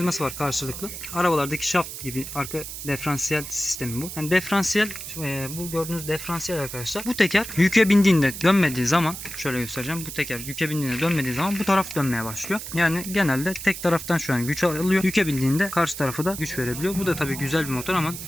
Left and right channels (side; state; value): right; noise; hiss, 9 dB below the sound